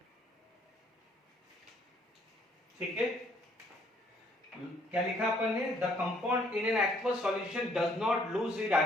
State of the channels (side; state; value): both; normal; correlation 0.64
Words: ठीक है। क्या लिखा अपन ने, the compound in an aqueous solution does not lose it